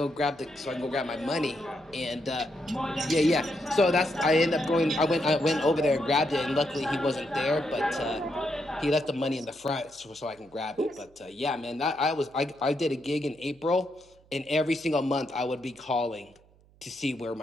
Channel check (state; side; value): noise; right; hum, 29 dB below the sound